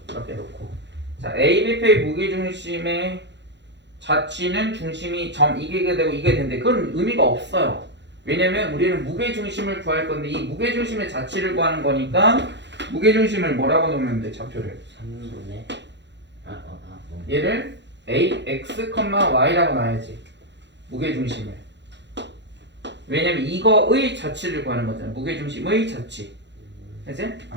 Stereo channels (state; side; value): late; left; 0.52 ms